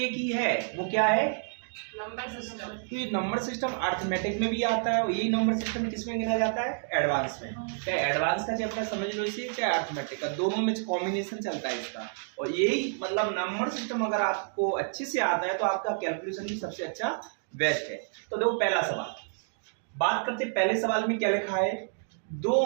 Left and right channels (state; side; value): silent; left; digital silence